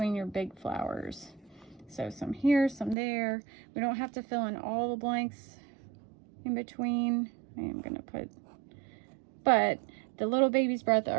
your big flowers. So some here, some there. We don't have to fill in all the blanks in between. I am gonna put, but the little baby's breath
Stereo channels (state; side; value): drops out; left; at 3.0 s